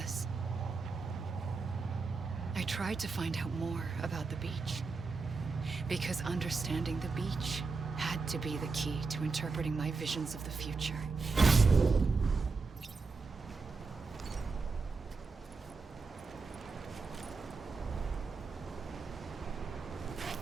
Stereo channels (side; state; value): left; quieter; 4.4 dB